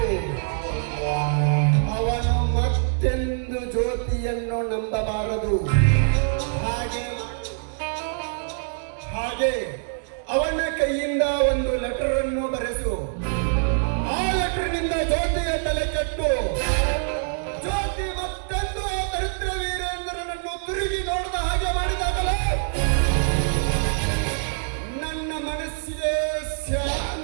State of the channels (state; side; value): silent; left; digital silence